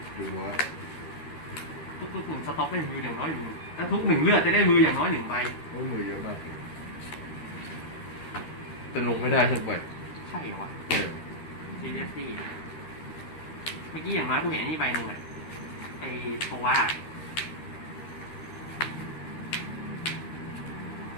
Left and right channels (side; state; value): right; late; 13 ms